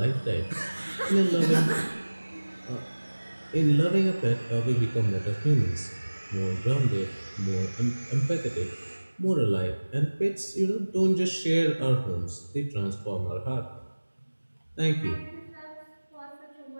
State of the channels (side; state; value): both; inverted; correlation -1.00